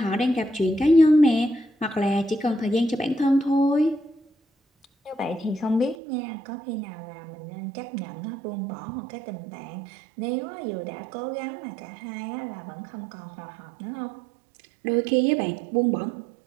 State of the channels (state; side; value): drops out; left; at 6.0 s